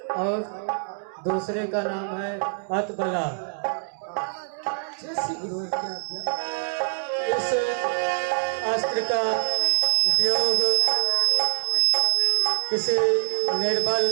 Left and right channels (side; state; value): left; silent; digital silence